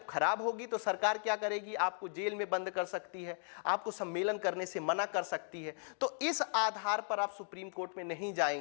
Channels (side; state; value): right; silent; 53 dB below the other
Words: खराब होगी तो सरकार क्या करेगी, आपको जेल में बंद कर सकती है, आपको सम्मेलन करने से मना कर सकती है। तो इस आधार पर आप सुप्रीम कोर्ट में नहीं